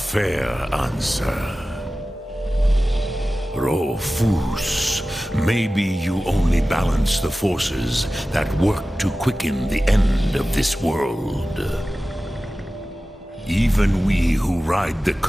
answer. Rofus, maybe you only balance the forces that work to quicken the end of this world. Even we who ride the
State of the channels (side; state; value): both; normal; correlation 0.96